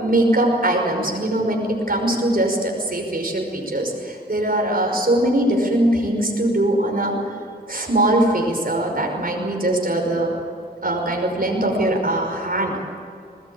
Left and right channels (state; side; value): normal; both; correlation 0.49